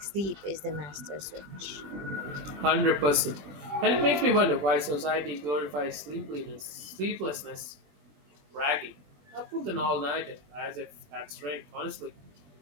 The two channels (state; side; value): late; left; 21 ms